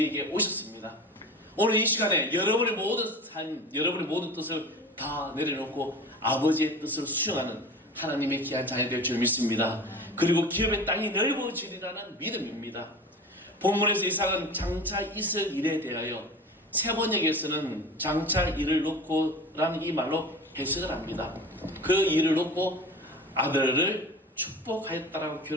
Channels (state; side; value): normal; both; correlation 0.35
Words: 오셨습니다. 오늘 이 시간에 여러분의 모든 삶, 여러분의 모든 뜻을 다 내려놓고 아버지의 뜻을 수용하는 하나님의 귀한 자녀 될 줄 믿습니다. 그리고 기업의 땅이 넓어지리라는 믿음입니다. 본문에서 이삭은 장차 있을 일에 대하여 세번역에서는 장차 일을 놓고 라는 이 말로 해석을 합니다. 그 일을 놓고 아들을 축복하였다라고